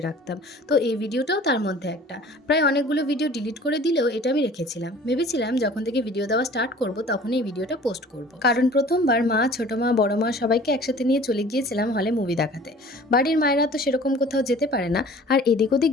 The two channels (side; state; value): both; normal; correlation 0.47